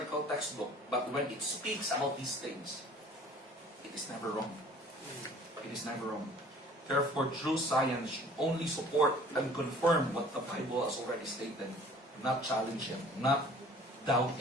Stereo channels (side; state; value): both; normal; correlation 0.51